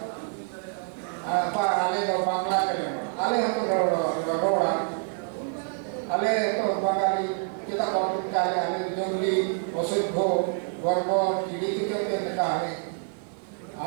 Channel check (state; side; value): silent; left; 60 dB below the other